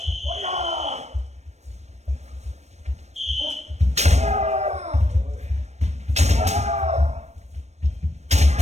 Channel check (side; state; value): left; late; 0.32 ms